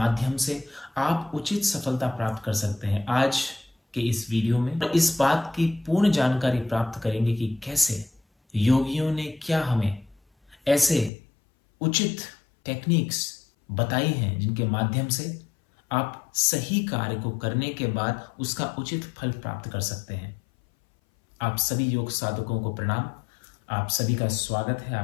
से आप उचित सफलता प्राप्त कर सकते हैं। आज के इस वीडियो में इस बात की पूर्ण जानकारी प्राप्त करेंगे कि कैसे योगियों ने क्या हमें ऐसे उचित टेक्निक्स बताई हैं जिनके माध्यम से आप सही कार्य को करने के बाद उसका उचित फल प्राप्त कर सकते हैं। आप सभी योग साधकों को प्रणाम। आप सभी का स्वागत है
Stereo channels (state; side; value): drops out; right; at 11.1 s